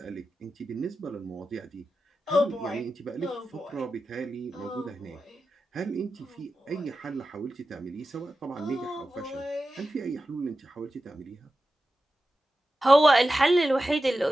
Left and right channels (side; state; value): both; normal; correlation 0.92